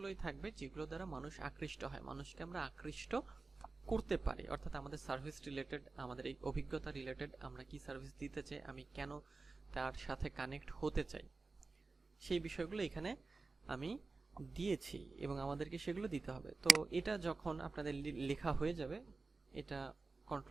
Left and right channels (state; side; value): quieter; left; 3.8 dB